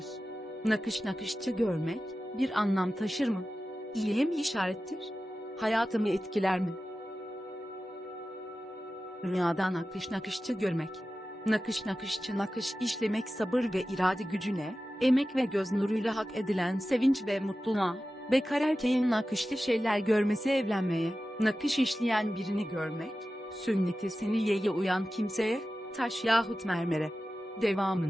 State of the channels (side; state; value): both; normal; correlation 0.94